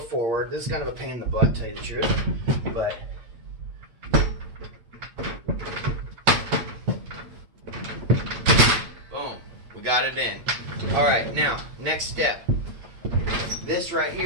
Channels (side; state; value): left; late; 8.9 ms